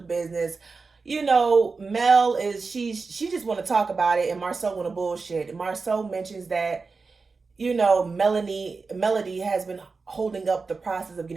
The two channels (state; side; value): quieter; left; 4.4 dB